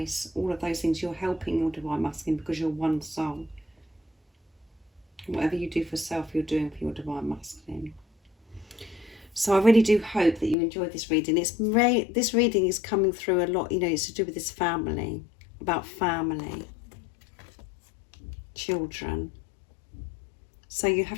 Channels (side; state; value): right; drops out; at 10.6 s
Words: all of those things, you're helping your Divine Masculine because you're one soul. Whatever you do for self, you're doing for your Divine Masculine. So I really do hope that you enjoyed this reading. This reading is coming through a lot, it's to do with this family, about family, children. So you